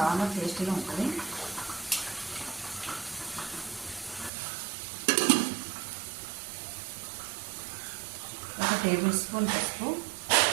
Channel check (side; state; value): left; drops out; at 4.3 s